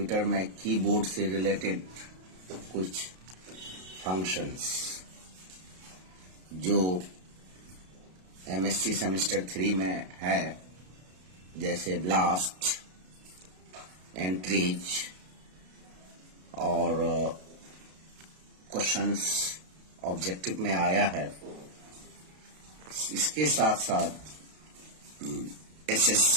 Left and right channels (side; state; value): left; late; 32 ms